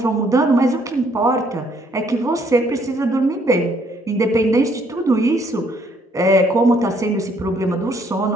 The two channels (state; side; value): normal; both; correlation 0.67